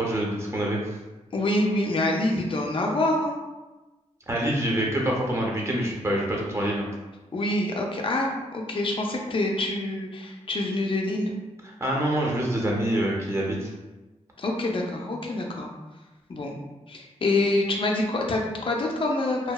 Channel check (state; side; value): normal; both; correlation 0.66